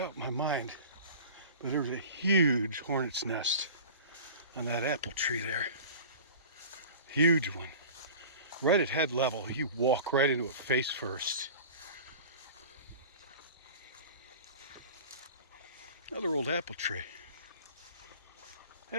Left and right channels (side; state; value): both; inverted; correlation -0.38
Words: in my mind, but there was a huge hornet's nest on that apple tree there. Huge one. Right at head level, you walk right into it face first. Another old apple tree.